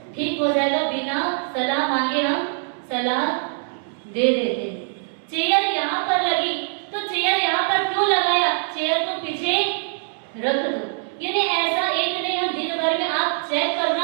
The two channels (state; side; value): silent; left; 63 dB below the other